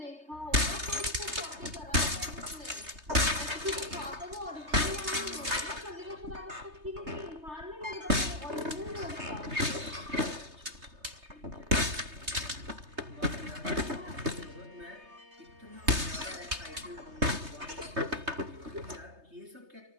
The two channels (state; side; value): late; left; 3.3 ms